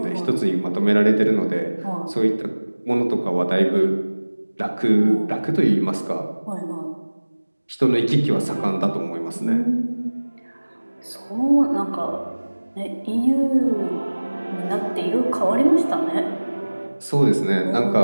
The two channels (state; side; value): inverted; both; correlation -1.00